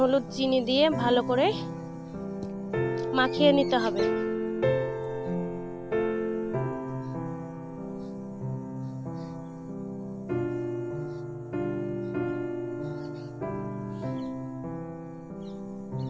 চিনি দিয়ে ভালো করে মাখিয়ে নিতে হবে।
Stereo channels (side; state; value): both; identical; correlation 1.00